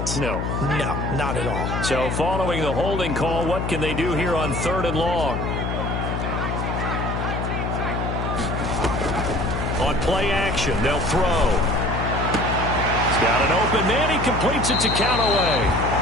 No. No, not at all. So following the holding call, what can they do here on 3rd and long? On play action, they'll throw. He's got an open man. He completes it to Callaway.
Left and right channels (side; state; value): left; noise; hum, 2 dB below the sound